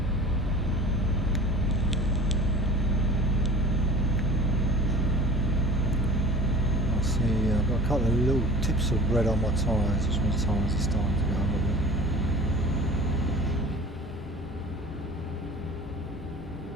I see I've got a couple of little tips of red on my tyres, which means tyres are starting to go a little bit.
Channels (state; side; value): normal; both; correlation 0.42